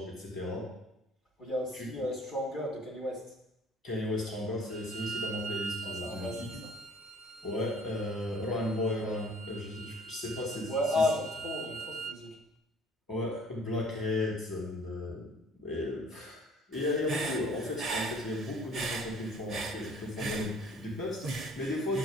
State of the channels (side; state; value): both; normal; correlation 0.54